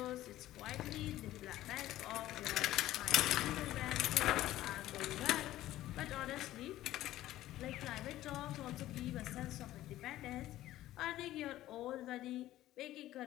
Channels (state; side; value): quieter; right; 14.6 dB